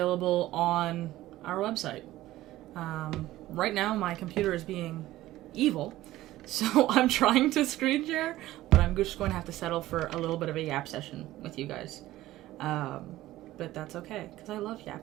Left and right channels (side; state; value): left; quieter; 15.7 dB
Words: on our website. Right now, my computer is being evil, so I'm trying to screen share, but I'm just going to have to settle for a little bit of a yap session with you guys. But that's okay, because I love